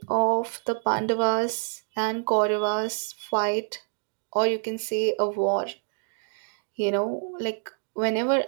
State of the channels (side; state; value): left; silent; 60 dB below the other